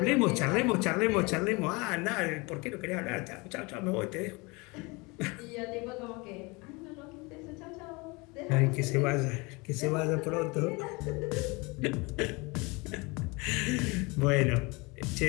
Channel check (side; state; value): right; quieter; 26.7 dB